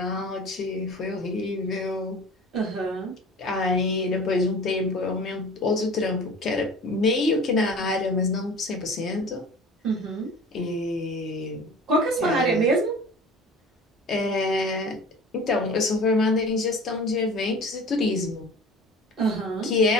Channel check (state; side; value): normal; both; correlation 0.40